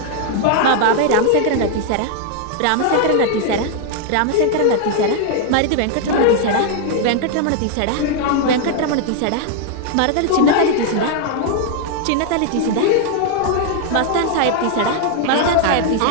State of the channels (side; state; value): both; different; correlation 0.00